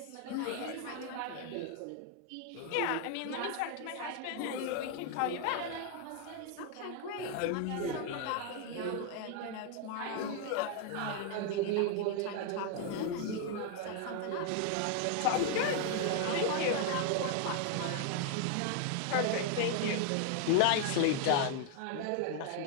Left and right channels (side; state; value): both; different; correlation 0.00